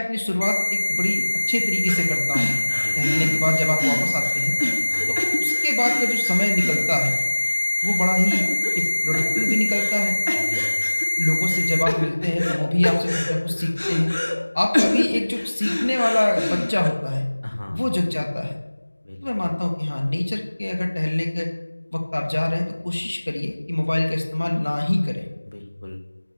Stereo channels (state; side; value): inverted; both; correlation -1.00